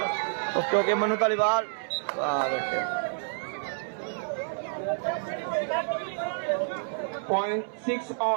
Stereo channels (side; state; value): left; silent; 59 dB below the other